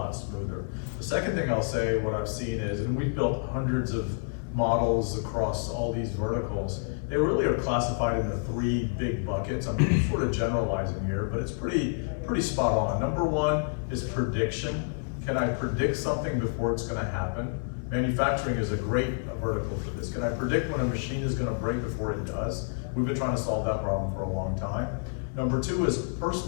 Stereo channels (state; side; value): silent; right; 59 dB below the other